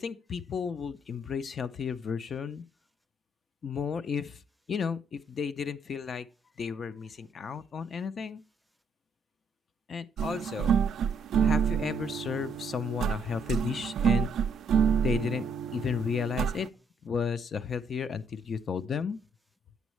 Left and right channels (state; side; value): normal; both; correlation 0.69